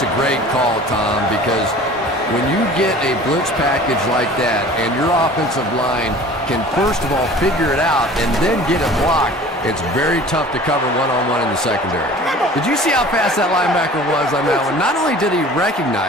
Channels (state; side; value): normal; both; correlation 0.44